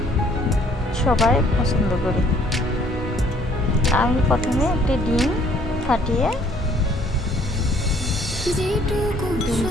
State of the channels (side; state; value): both; normal; correlation 0.60